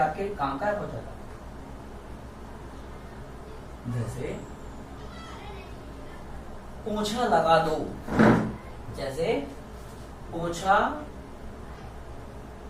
काम का है, पहुंचाता। जैसे पोछा लगा दो, जैसे पोछा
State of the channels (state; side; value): identical; both; correlation 1.00